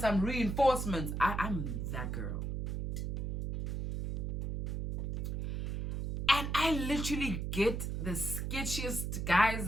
reinforcements. I'm that girl. And I literally get the sketchiest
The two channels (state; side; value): noise; right; hum, 3 dB below the sound